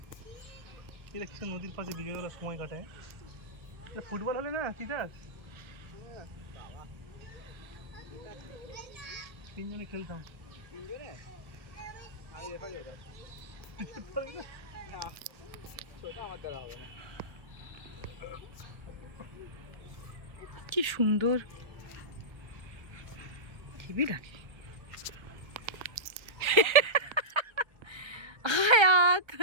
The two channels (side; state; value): left; late; 1.4 ms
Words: এটা কিছু নদীর পাশে বিকেলবেলা সময় কাটায়। এটা ফুটবল হলে না তিতাস তিনজনে খেলতাম। তিনজনে আমি রেফারি হতাম। না সেটা আমার দ্বারা হবে না। কি সুন্দর হেবি লাগে। আয়াত